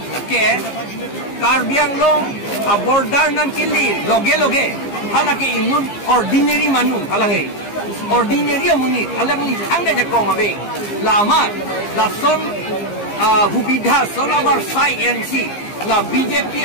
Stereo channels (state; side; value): late; right; 15 ms